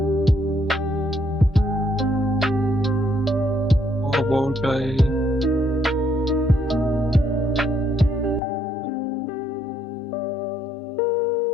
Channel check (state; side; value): drops out; right; at 8.4 s